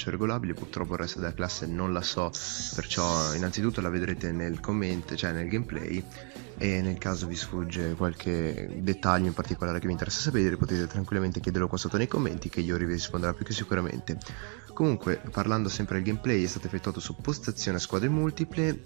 regolabile. Purtroppo il resto della classe non la so, perciò innanzitutto la vedrete nel commento, cioè nel gameplay. E nel caso vi sfugge qualche dettaglio in particolare che vi interessa sapere, potete tranquillamente chiederlo qua sotto nei commenti, che Yuri vi risponderà più che sicuramente. Comunque, parlando sempre del gameplay, è stato effettuato su postazione a squadre multiple.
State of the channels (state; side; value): quieter; left; 38.4 dB